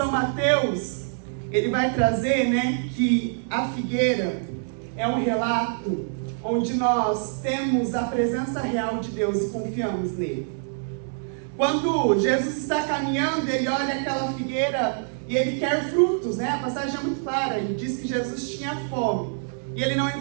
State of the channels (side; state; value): left; silent; digital silence